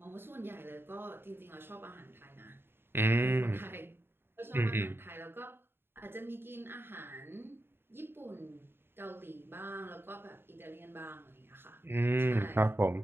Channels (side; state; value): left; late; 0.11 ms